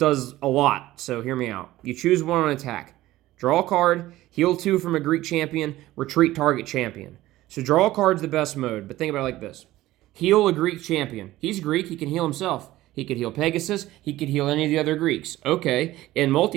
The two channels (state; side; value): quieter; left; 16.3 dB